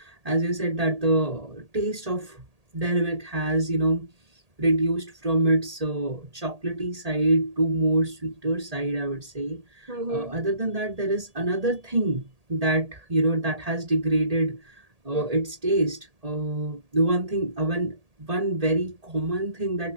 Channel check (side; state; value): left; late; 1.8 ms